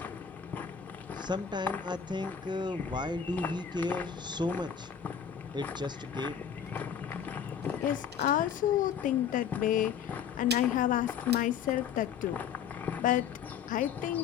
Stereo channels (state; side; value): quieter; right; 7.9 dB